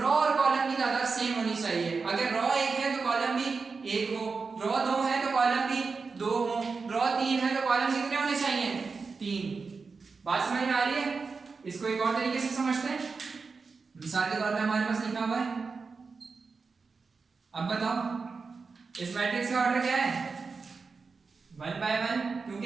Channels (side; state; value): left; quieter; 4.7 dB